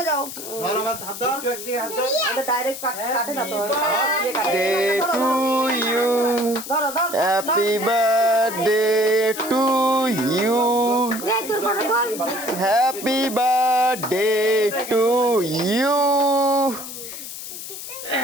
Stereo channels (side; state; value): left; noise; hiss, 10 dB below the sound